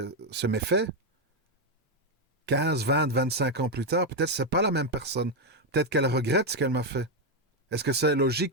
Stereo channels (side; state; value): both; normal; correlation 0.04